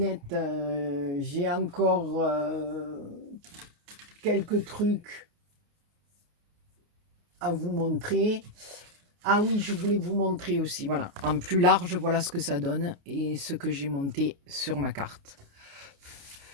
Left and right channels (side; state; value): left; late; 29 ms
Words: j'ai encore quelques trucs à vous montrer. Ah oui, je voulais vous montrer aussi, voilà, en plus large, voilà ce que ça donne et ce que j'ai monté sur ma carte.